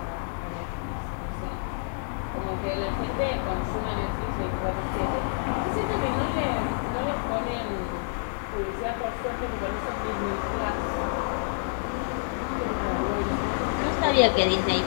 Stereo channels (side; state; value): right; silent; digital silence